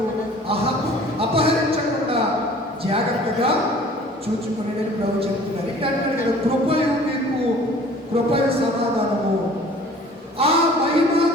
అపహరించకుండా జాగ్రత్తగా చూచుకునే ప్రభు చెప్తున్నారు. ఏంటంటే కదా, కృపయు మీకు కృపయు సమాధానము ఆ మహిమ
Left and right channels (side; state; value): both; normal; correlation 0.49